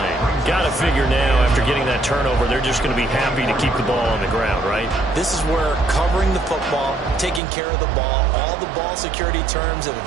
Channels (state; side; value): drops out; left; at 7.4 s